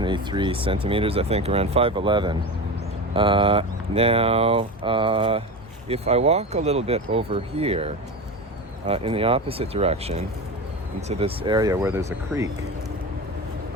centimeters, I think, around 5'11". Now, if I walk a little bit over here in the opposite direction into this area where there's a creek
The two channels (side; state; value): both; normal; correlation 0.24